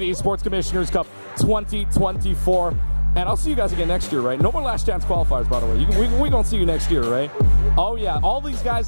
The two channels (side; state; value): both; inverted; correlation -1.00